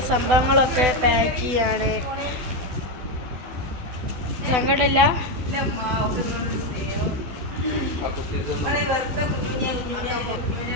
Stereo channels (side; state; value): left; late; 12 ms